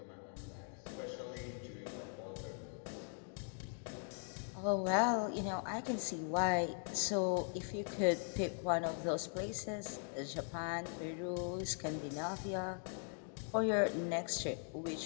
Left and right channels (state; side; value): silent; right; 51 dB below the other